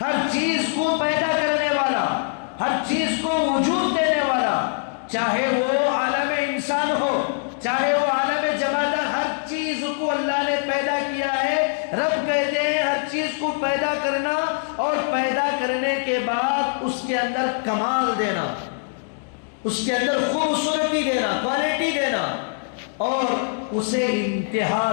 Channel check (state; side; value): silent; right; digital silence